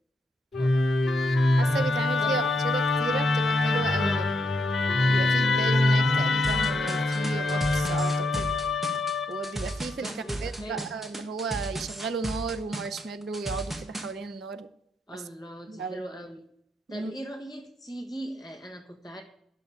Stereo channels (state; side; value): normal; both; correlation 0.79